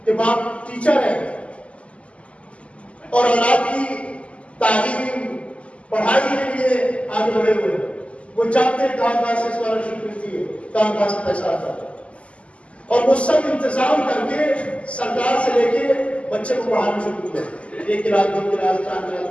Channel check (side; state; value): right; late; 0.060 ms